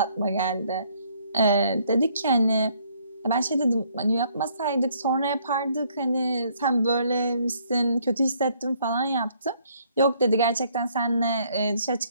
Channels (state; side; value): inverted; both; correlation -0.66